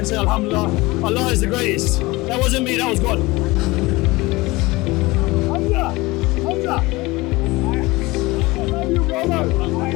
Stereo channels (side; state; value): right; quieter; 21.7 dB